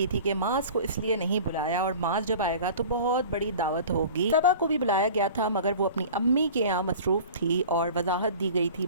थी कि मास को इसलिए नहीं बुलाया और मास जब आएगा तो बहुत बड़ी दावत होगी। सबा को भी बुलाया गया था, मगर वो अपनी अम्मी के यहाँ मसरूफ़ थी और वजाहत दी गई थी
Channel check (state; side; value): inverted; both; correlation -0.40